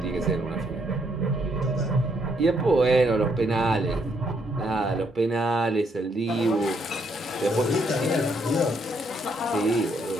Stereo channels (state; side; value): normal; both; correlation 0.72